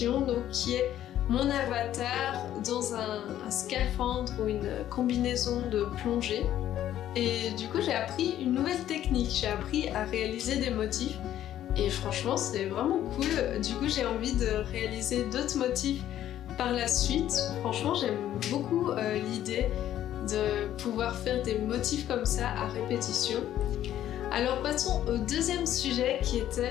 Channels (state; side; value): quieter; right; 11.9 dB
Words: donc qui est mon avatar dans un scaphandre ou une combinaison de plongée. Et du coup j'ai appris une nouvelle technique, j'ai appris à réaliser des motifs et franchement c'est vraiment cool. Du coup j'ai envie de réaliser d'autres motifs par la suite. Franchement j'aime beaucoup l'idée de pouvoir faire des motifs comme ça à répétition. Alors passons au deuxième sujet qui